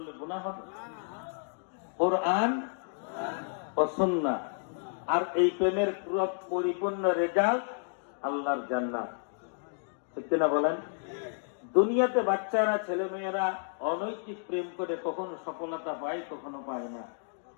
গুনাহ হবে? কুরআন ও সুন্নাহ। আর এই প্রেমের পুরো পরিপূর্ণ রেজাল্ট আল্লাহর জান্নাত, ঠিক কিনা বলেন? দুনিয়াতে বাচ্চারা, ছেলে মেয়েরা অনৈতিক প্রেম করে কখনো সফলতা পায়, কখনো পায় না।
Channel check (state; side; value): silent; right; digital silence